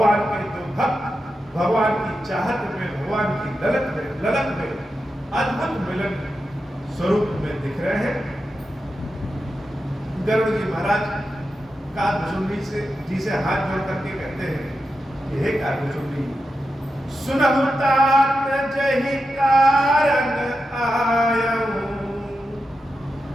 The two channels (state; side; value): normal; both; correlation 0.89